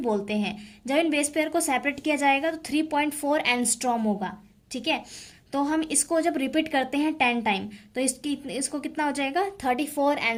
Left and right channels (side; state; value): both; identical; correlation 1.00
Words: हैं। जब इन बेस पेयर को सेपरेट किया जाएगा तो 3.4 एंगस्ट्रॉम होगा, ठीक है। तो हम इसको जब रिपीट करते हैं 10 टाइम तो इसको कितना हो जाएगा, 34